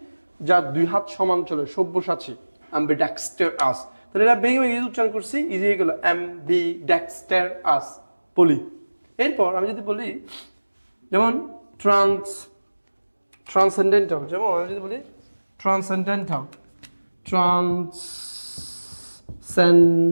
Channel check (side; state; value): both; inverted; correlation -1.00